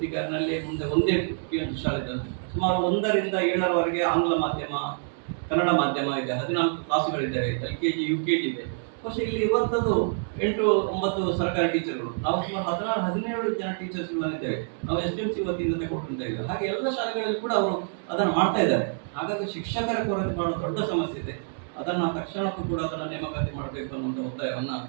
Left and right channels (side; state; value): left; silent; digital silence